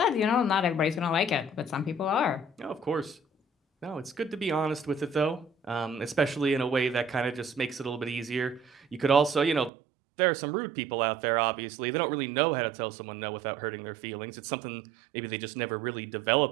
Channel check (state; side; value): drops out; left; at 9.7 s